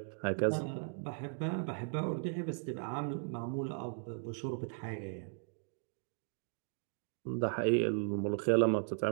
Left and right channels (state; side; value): silent; left; 53 dB below the other